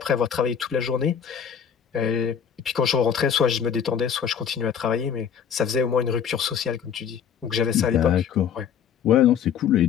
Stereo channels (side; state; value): right; quieter; 7.8 dB